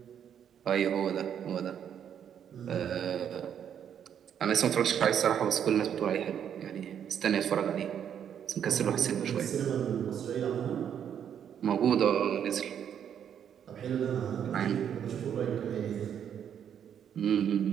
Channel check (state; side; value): quieter; left; 8.8 dB